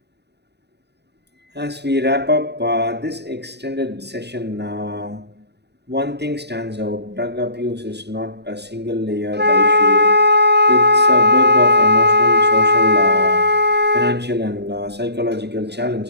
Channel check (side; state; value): left; late; 0.49 ms